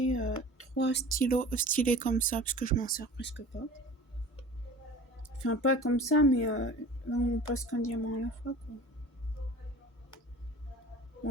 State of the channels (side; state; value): both; normal; correlation 0.40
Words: 3 stylos stylés comme ça, parce que je m'en sers presque pas. Enfin, pas comme ça, mais là on passe qu'un diamant à la fois, quoi.